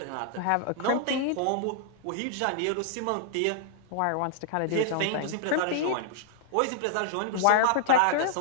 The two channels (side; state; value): both; different; correlation -0.01